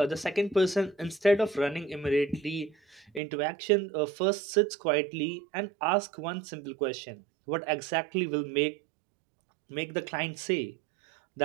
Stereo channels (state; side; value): drops out; left; at 3.2 s